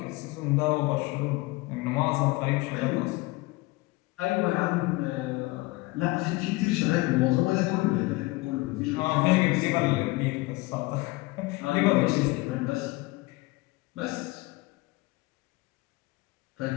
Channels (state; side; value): quieter; right; 21.9 dB